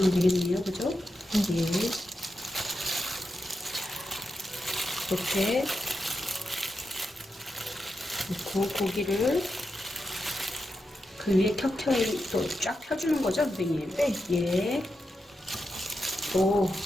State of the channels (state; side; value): normal; both; correlation 0.87